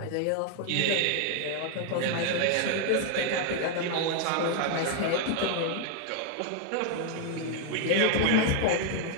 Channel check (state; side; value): different; both; correlation 0.00